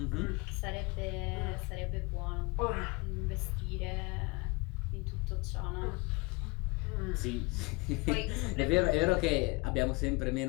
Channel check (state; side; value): quieter; right; 25.9 dB